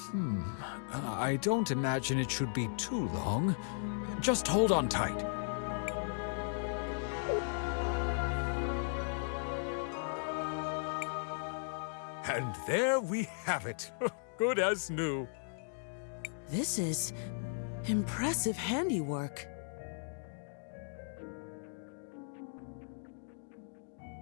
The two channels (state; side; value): silent; right; digital silence